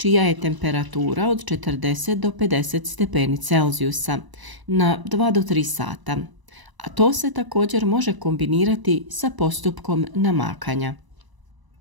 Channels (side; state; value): left; late; 1.0 ms